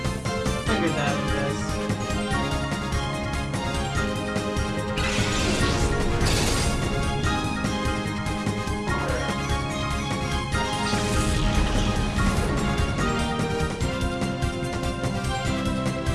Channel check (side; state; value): both; identical; correlation 1.00